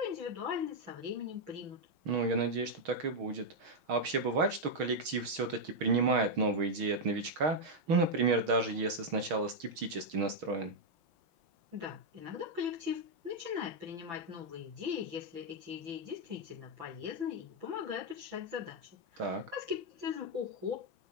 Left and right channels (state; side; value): late; left; 6.3 ms